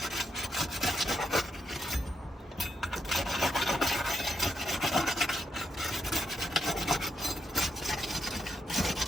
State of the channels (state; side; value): normal; both; correlation 0.81